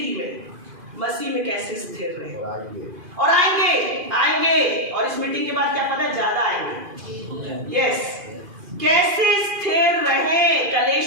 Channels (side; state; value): left; late; 2.5 ms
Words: में, मसीह में कैसे स्थिर रहे। और आएंगे और इस मीटिंग के बाद क्या पता है ज्यादा आएंगे। यस, कैसे स्थिर रहे